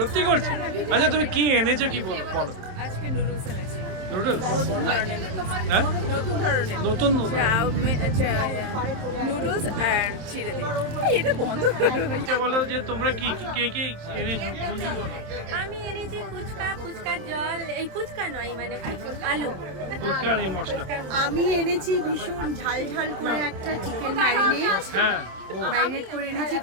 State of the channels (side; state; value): left; late; 27 ms